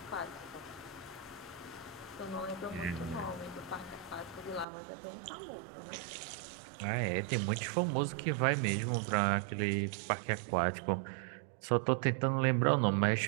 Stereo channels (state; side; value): drops out; left; at 4.7 s